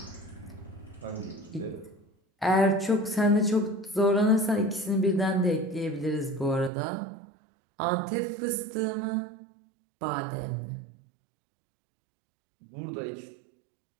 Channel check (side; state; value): left; drops out; at 6.7 s